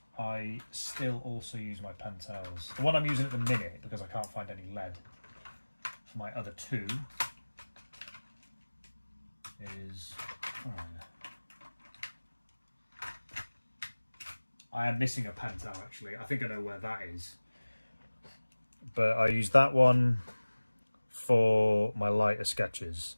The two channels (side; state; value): both; inverted; correlation -1.00